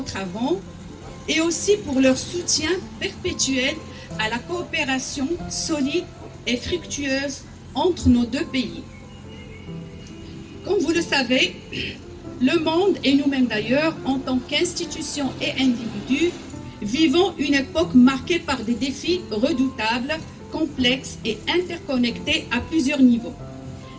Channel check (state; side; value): identical; both; correlation 1.00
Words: avant, et aussi pour leur soutien perpétuel à la coopération solide et fructueuse entre nos deux pays. Comme vous le savez, le monde, et nous-mêmes d'ailleurs, en tant qu'institutions et individus, vivons une époque marquée par des défis redoutables, complexes et interconnectés à plusieurs niveaux.